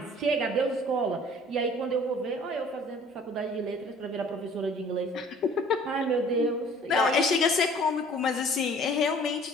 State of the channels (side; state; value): both; normal; correlation 0.52